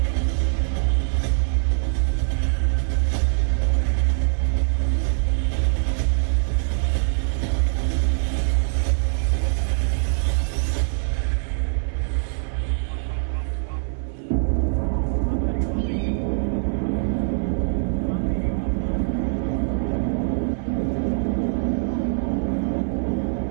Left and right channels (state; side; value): silent; left; 63 dB below the other